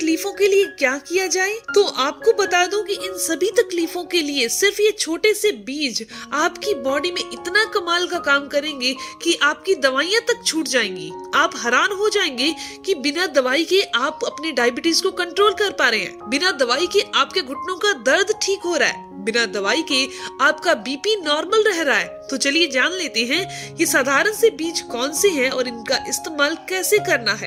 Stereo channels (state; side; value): identical; both; correlation 1.00